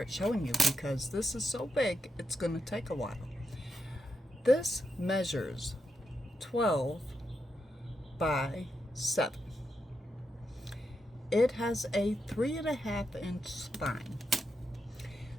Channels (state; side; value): normal; both; correlation 0.84